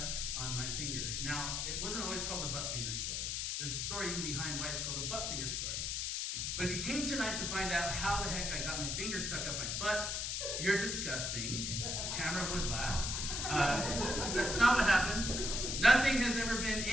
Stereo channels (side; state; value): left; noise; hiss, 1 dB below the sound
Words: on my finger. Now, it wasn't always called the butt finger story. There's a story behind why it's called the butt finger story. But if you came tonight to find out how the heck I got my finger stuck up my butt, you're disgusting. Tamara would laugh. That's not what happened. Nothing has ever been